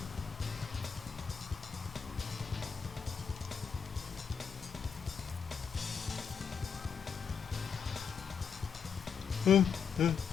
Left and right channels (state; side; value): quieter; right; 6.6 dB